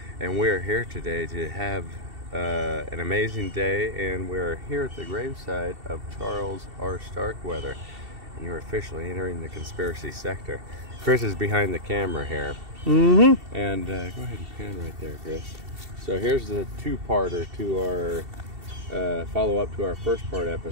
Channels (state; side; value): late; left; 2.7 ms